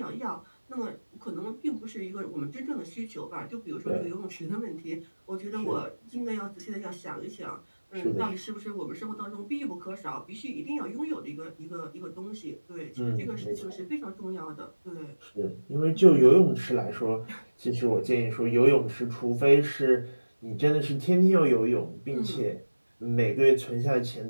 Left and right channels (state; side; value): inverted; both; correlation -1.00